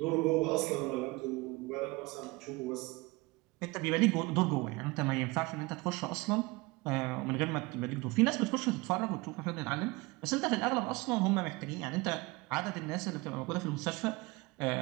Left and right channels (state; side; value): quieter; left; 23.8 dB